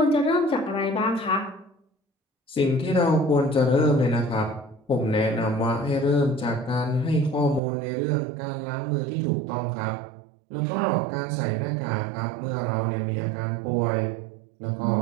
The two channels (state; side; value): drops out; left; at 7.6 s